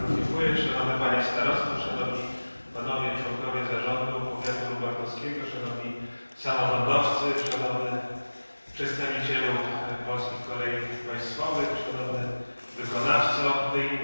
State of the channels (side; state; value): both; inverted; correlation -1.00